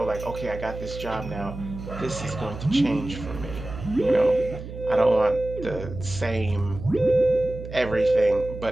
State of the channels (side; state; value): right; noise; hum, 11 dB below the sound